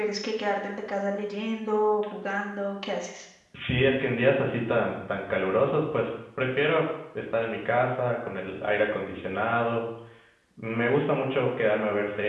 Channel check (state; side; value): identical; both; correlation 1.00